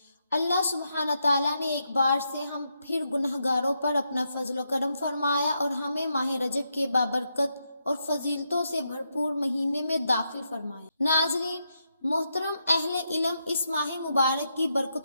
اللہ سبحانہ تعالیٰ نے ایک بار سے ہم پھر گنہگاروں پر اپنا فضل و کرم فرمایا اور ہمیں ماہ رجب کے بابرکت اور فضیلتوں سے بھرپور مہینے میں داخل فرمایا۔ ناظرین محترم، اہل علم اس ماہ مبارک کی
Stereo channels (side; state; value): both; inverted; correlation -0.82